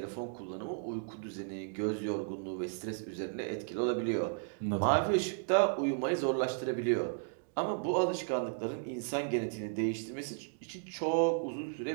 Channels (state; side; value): silent; left; digital silence